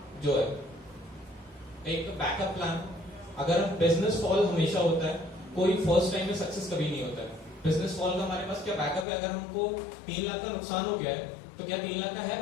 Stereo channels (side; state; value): right; drops out; at 9.1 s